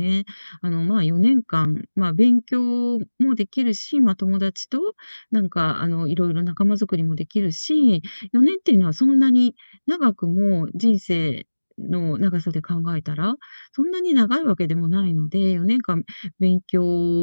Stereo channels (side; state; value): both; inverted; correlation -1.00